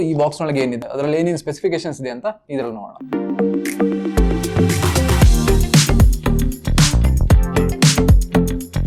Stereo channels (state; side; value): identical; both; correlation 1.00